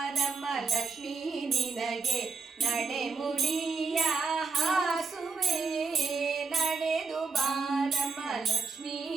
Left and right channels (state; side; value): quieter; left; 4.4 dB